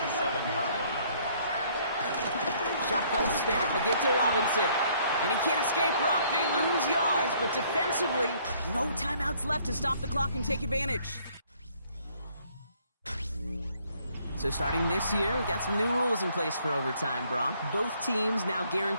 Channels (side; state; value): both; inverted; correlation -0.63